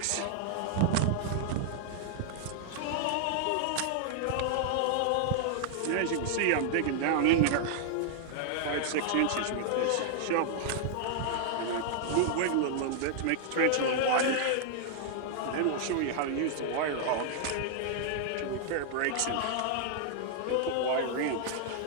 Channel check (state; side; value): different; both; correlation 0.00